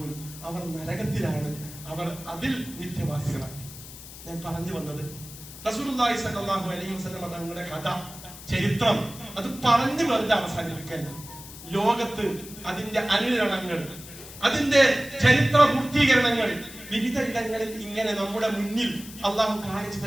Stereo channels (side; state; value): left; noise; hiss, 15 dB below the sound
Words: അവർ നരകത്തിലാണ്, അവർ അതിൽ നിത്യവാസികളാണ്. ഞാൻ പറഞ്ഞു വന്നത് റസൂലുള്ളാഹി സ്വല്ലല്ലാഹു അലൈഹി വസല്ലം തങ്ങളുടെ കഥ, ചരിത്രം അത് പറഞ്ഞു വെറുതെ അവസാനിപ്പിക്കല്ല. ലോകത്ത് അതിന്റെ അനുരണങ്ങൾ, അതിന്റെ ചരിത്ര പൂർത്തീകരണങ്ങൾ വിവിധ ഇടങ്ങളിൽ ഇങ്ങനെ നമ്മുടെ മുന്നിൽ അള്ളാഹു കാണിച്ചു